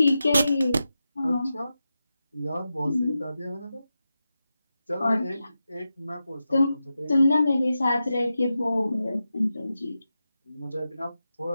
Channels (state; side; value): inverted; both; correlation -0.90